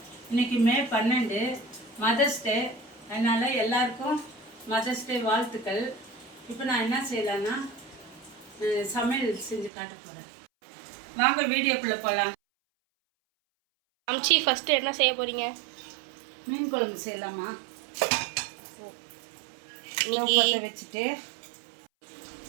இன்றைக்கி மே 12 மதர்ஸ் டே. அதனால் எல்லாருக்கும் மதர்ஸ் டே வாழ்த்துக்கள். இப்போ நான் என்ன செய்யலான்னா சமையல் செஞ்சு காட்ட போகிறேன். வாங்க வீடியோக்குள்ளே போகலாம். அம்ச்சி ஃபஸ்ட்டு என்ன செய்ய போகிறீங்க? மீன் குழம்பு செய்யலாமா? இன்னைக்கு வச்சுட்டு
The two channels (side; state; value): left; drops out; at 9.7 s